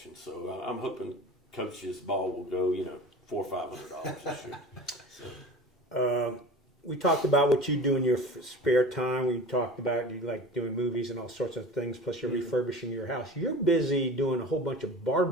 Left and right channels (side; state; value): both; normal; correlation 0.37